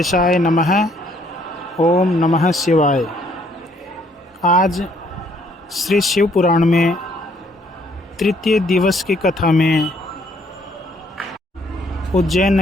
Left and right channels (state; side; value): normal; both; correlation 0.66